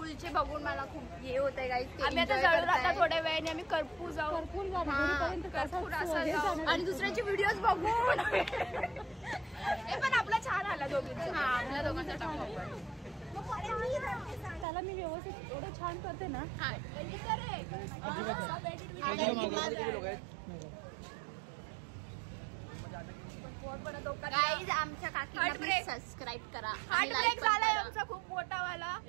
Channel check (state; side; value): drops out; left; at 14.7 s